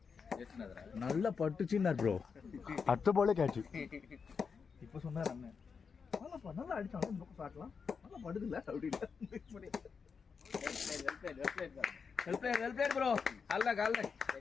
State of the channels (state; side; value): quieter; right; 5.7 dB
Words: ஏத்துனதரா நல்ல பட்டுச்சுன்னார் ப்ரோ அடுத்த பாலே கேட்ச் இப்போ சொன்னார் அண்ணன் நல்லா அடிச்சாலும் இந்த பக்கம் பார்க்கலாம் நல்லா படுதுல அப்படி வெல் பிளேட் ப்ரோ அல்ல கால்ல